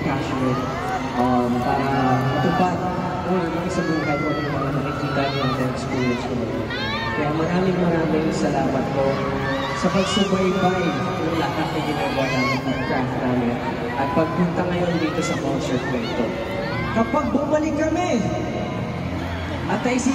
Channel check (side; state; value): both; identical; correlation 1.00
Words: passionate para matupad yung sa buhay ko ng mga nakikita natin experience ko. Kaya maraming salamat po sa pagsubaybay ng lahat na ginagawa namin at craft namin at pagpunta ngayon dito sa concert na ito. Kapag bumalik kami at